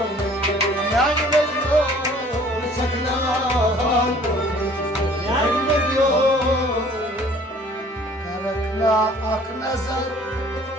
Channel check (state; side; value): normal; both; correlation 0.53